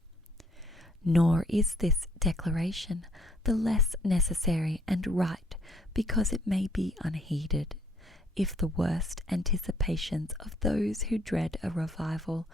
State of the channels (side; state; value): both; normal; correlation 0.64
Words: Nor is this declaration the less necessary and right because it may be unheeded, if the worst anticipations of those who dread a revival